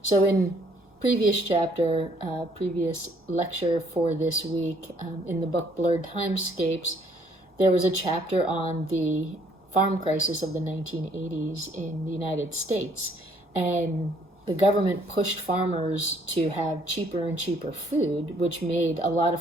So in previous lecture for this week, in the book Blurred Timescapes, there was a chapter on the farm crisis of the 1980s in the United States. And the government pushed farmers to have cheaper and cheaper food, which made a lot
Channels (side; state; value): both; normal; correlation 0.64